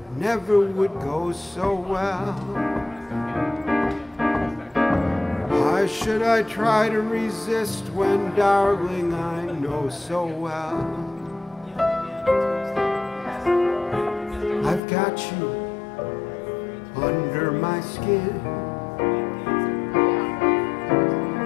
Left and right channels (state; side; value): drops out; right; at 14.8 s